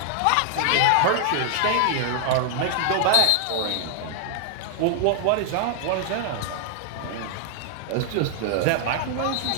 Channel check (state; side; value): different; both; correlation 0.00